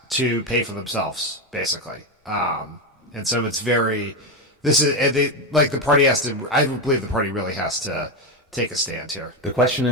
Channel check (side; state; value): both; normal; correlation 0.11